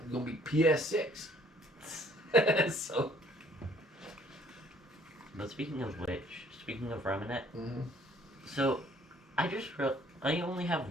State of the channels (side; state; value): both; normal; correlation 0.60